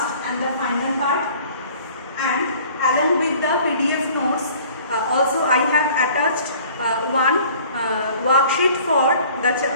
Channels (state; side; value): inverted; both; correlation -0.51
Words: and the final part, and along with the PDF notes also I have attached one worksheet for